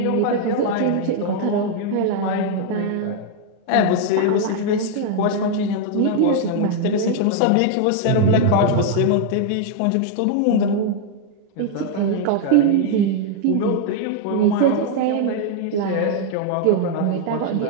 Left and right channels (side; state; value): both; different; correlation 0.00